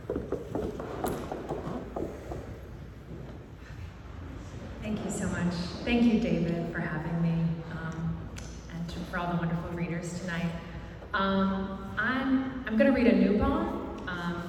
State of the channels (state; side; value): identical; both; correlation 1.00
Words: Thank you so much. Thank you, David, for having me, and for all the wonderful readers tonight. I'm going to read a new poem,